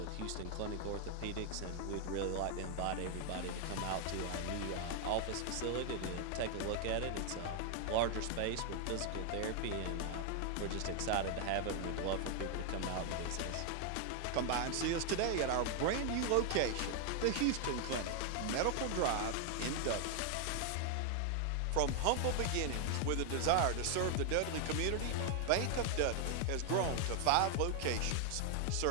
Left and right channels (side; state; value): both; different; correlation 0.00